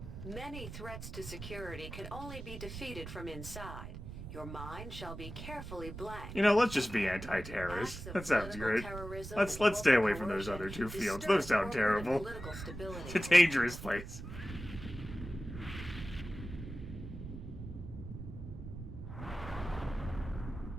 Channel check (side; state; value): right; noise; rumble, 10 dB below the sound